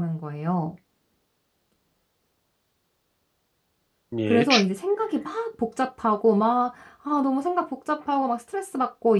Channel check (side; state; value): both; identical; correlation 1.00